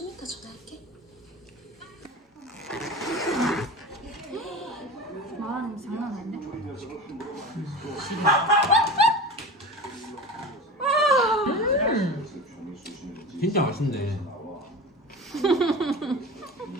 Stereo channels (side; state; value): both; normal; correlation 0.31